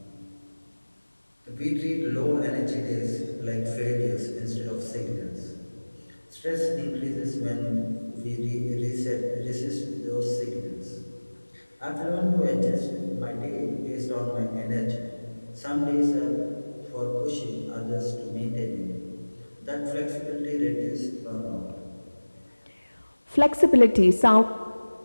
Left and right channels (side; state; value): both; inverted; correlation -1.00